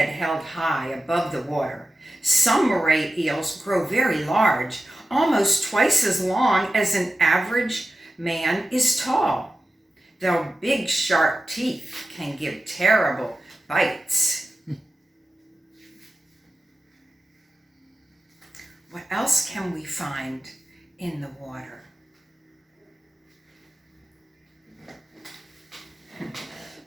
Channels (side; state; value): both; normal; correlation 0.93